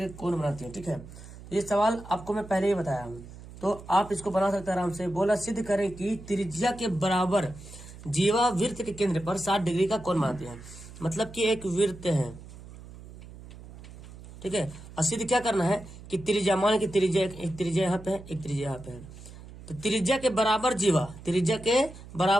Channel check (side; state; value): right; noise; hum, 16 dB below the sound